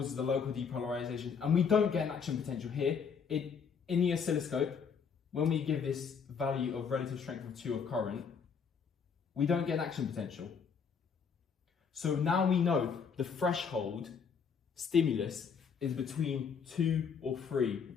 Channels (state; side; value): quieter; right; 6.3 dB